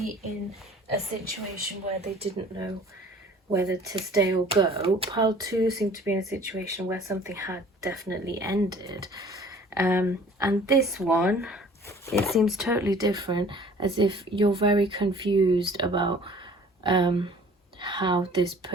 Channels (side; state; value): both; normal; correlation 0.50